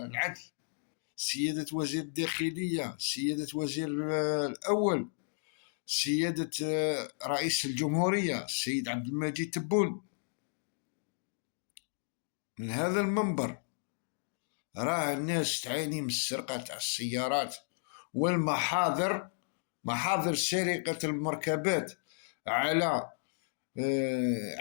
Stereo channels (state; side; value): silent; right; digital silence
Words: العدل، سيادة وزير الداخلية، سيادة وزير الأول، سيادة رئيس الجمهورية السيد عبد المجيد تبون. من هذا المنبر راه الناس تعاني من السرقة تاع السيارات والمحاضر، محاضر سرقة المركبات على